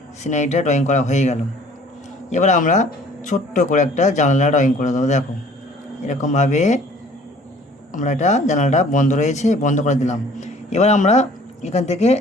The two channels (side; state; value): both; normal; correlation 0.53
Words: সিনারিটা ড্রয়িং করা হয়ে গেল। এবার আমরা ছোট্ট করে একটা জানালা ড্রয়িং করে দেবো। দেখো, এরকমভাবে আমরা এটা জানালাটা বন্ধ রয়েছে, বন্ধ করে দিলাম। এবার আমরা এখান থেকে